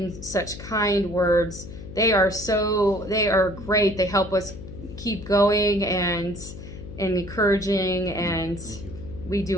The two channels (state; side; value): noise; left; hum, 12 dB below the sound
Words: such kind words. They are great. They help us keep going and encouraging, and we